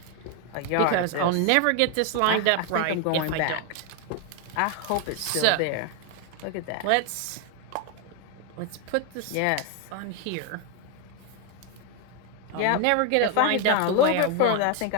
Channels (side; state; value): both; different; correlation 0.01